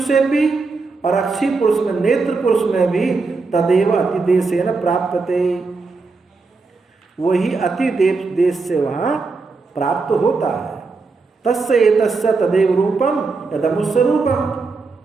भी, और अक्षी पुरुष में, नेत्र पुरुष में भी तदेव अतिदेशेन प्राप्यते, वही अति देश से वहाँ प्राप्त होता है। तस्य एतस्य तदेव रूपम यदमुस्य रूपम,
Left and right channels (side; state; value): left; quieter; 4.1 dB